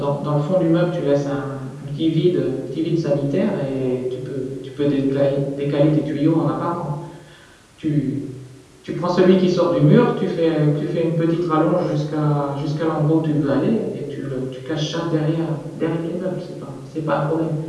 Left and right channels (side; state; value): both; identical; correlation 1.00